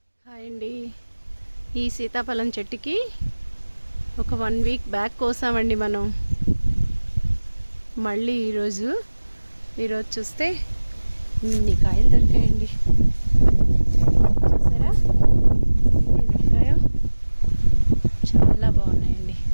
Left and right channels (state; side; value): inverted; both; correlation -1.00